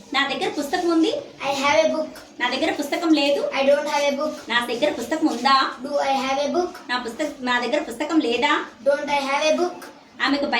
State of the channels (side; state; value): both; identical; correlation 1.00